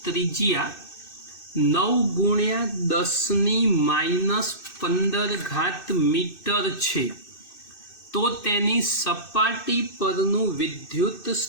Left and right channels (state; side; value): late; right; 2.6 ms